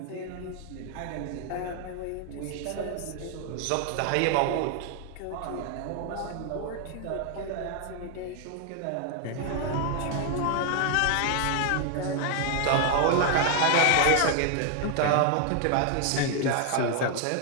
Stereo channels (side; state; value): both; different; correlation 0.00